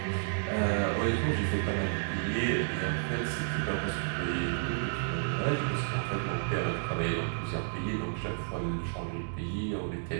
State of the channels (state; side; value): silent; left; digital silence